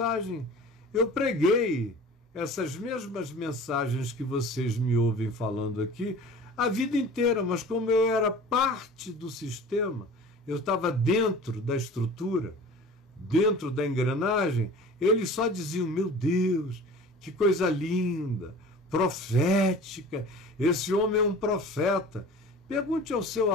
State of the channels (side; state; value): both; normal; correlation 0.41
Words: Eu preguei essas mesmas mensagens que vocês me ouvem falando aqui a vida inteira, mas como eu era parte do sistema, eu estava dentro da estrutura, dentro da engrenagem, eles só diziam, meu Deus, que coisa linda, profética, esse homem é um profeta. Pergunte ao seu